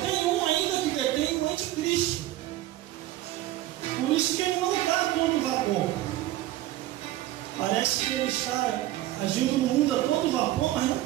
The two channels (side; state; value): left; quieter; 15.3 dB